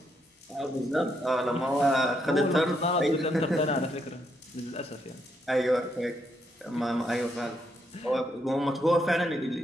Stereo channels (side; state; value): both; normal; correlation 0.77